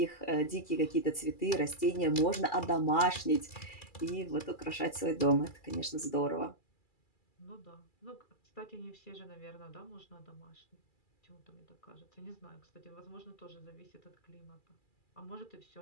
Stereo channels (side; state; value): right; late; 2.3 ms